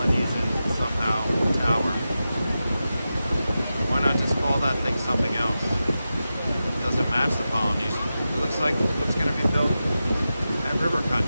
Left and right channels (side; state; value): both; inverted; correlation -0.92